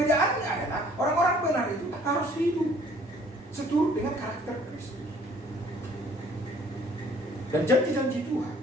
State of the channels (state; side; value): normal; both; correlation 0.57